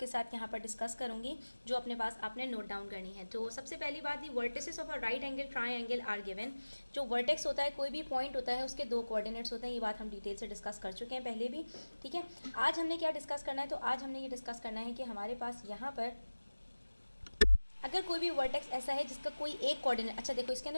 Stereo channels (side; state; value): both; inverted; correlation -1.00